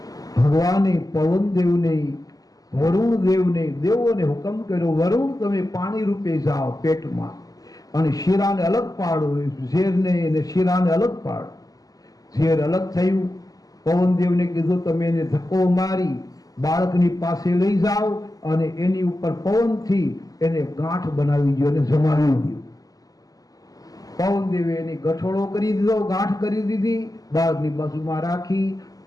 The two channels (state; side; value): late; right; 0.17 ms